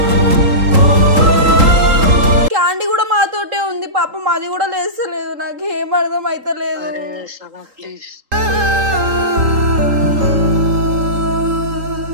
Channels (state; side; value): late; left; 3.8 ms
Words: క్యాండీ కూడా మాతోటే ఉంది పాపం, అది కూడా లేస్తలేదు. నాకు ఏం అర్థం అయితలేదు.